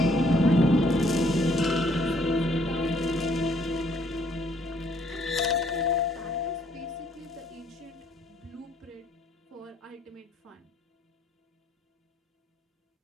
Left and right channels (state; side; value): normal; both; correlation 0.66